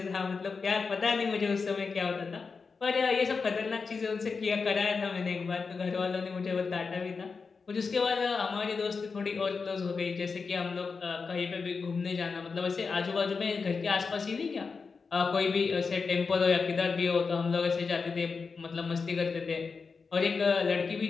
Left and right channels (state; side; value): quieter; right; 4.9 dB